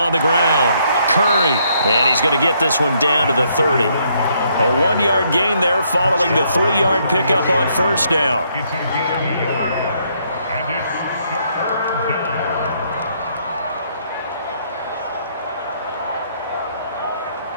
the ground. Curry. And he's going to get this one down to the 30. A 1-yard gain there following the 3-yard pickup on first down. It's a gain of a yard. And it's 3rd down.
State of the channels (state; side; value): inverted; both; correlation -0.71